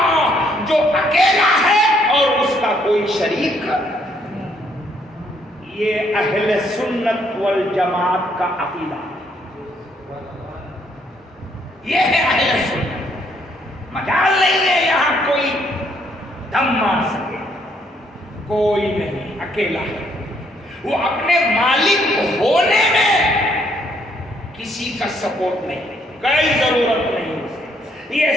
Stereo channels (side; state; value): both; normal; correlation 0.69